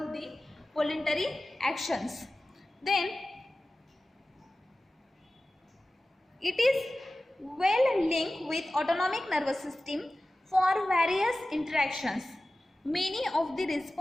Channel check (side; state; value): both; normal; correlation 0.96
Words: the voluntary actions. Then it is well linked with autonomic nervous system for various interactions. Many of the